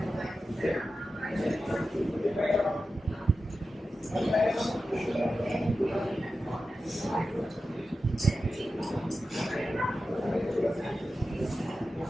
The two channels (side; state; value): both; normal; correlation 0.92